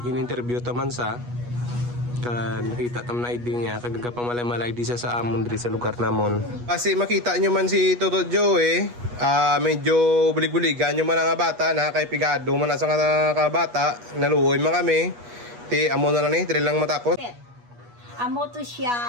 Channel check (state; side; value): late; left; 8.3 ms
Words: in-interview taman sa nakita tam na ID niya kagaga pamamalay di sa amon diri sa lugar namon. Kasi makita nyo man si Toto Joe medyo bulig-buligan nyo man ang bata na kay pigado man sa nga bata naluoy man kami ti amo na lang ni diri lang matapos. Amo to